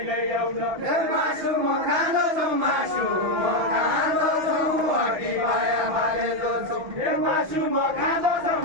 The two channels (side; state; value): left; late; 6.1 ms